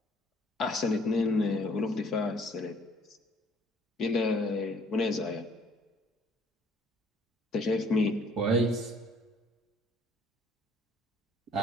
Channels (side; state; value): both; normal; correlation 0.60